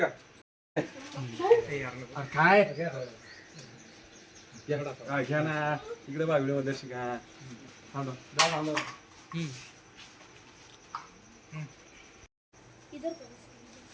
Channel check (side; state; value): both; identical; correlation 1.00